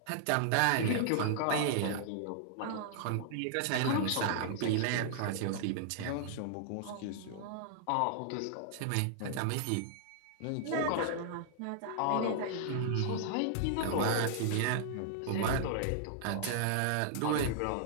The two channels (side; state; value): both; different; correlation -0.01